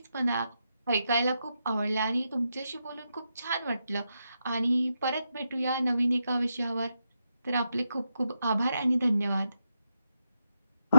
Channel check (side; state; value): both; inverted; correlation -0.85